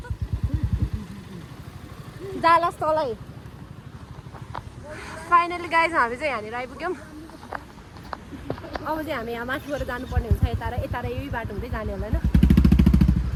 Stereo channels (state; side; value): identical; both; correlation 1.00